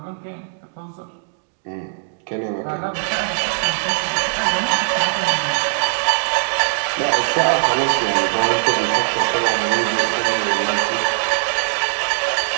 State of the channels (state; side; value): silent; left; digital silence